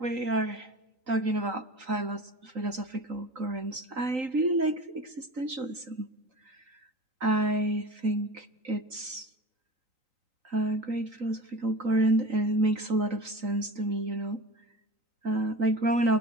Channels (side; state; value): left; late; 3.9 ms